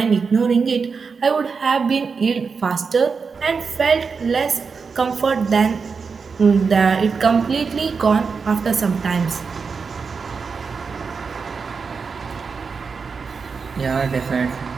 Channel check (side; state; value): left; quieter; 5.3 dB